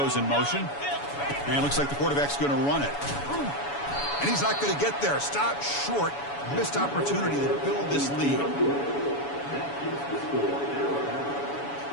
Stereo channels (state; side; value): late; right; 7.1 ms